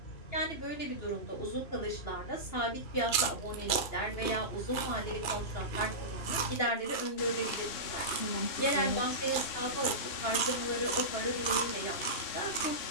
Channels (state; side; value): late; right; 3.0 ms